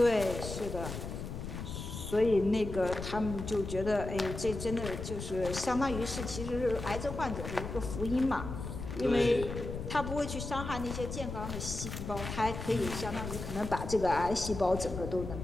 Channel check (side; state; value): left; noise; rumble, 7 dB below the sound